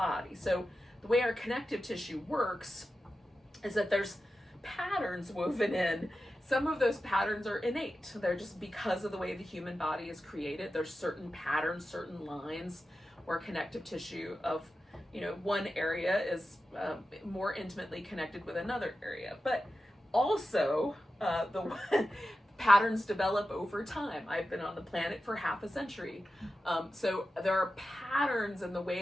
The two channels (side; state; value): both; normal; correlation 0.92